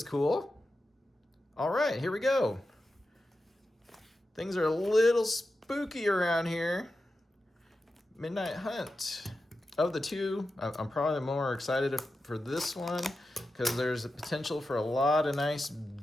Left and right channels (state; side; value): normal; both; correlation 0.91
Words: cool. All right, here we go. Things are a little spooky around here. Midnight Hunt. Of the two, I'm probably more excited for this one because there's a potential for a lot of nice